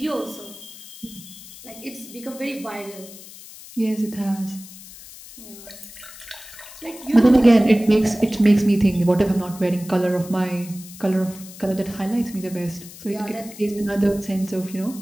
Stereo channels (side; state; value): left; noise; hiss, 17 dB below the sound